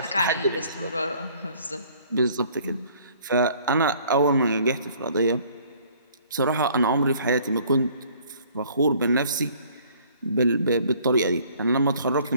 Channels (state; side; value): inverted; both; correlation -0.57